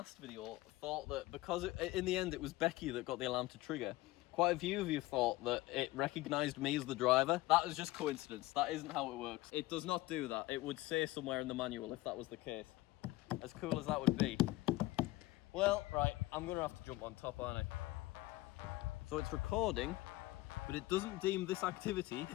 video thought that because in the end it was Becky that got the alarm to trigger. Quite a few of you thought that it recognised me as the driver. That is just coincidence. That isn't how it works. It does not do that. It would say somewhere in the manual if that was the case. As cool as that would be. Well, right, I'm going to have to jump on top, aren't I? So it's recording, but it doesn't deem this activity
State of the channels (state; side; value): quieter; right; 18.7 dB